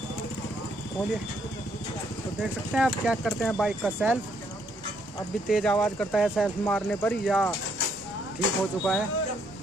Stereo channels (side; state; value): both; normal; correlation 0.71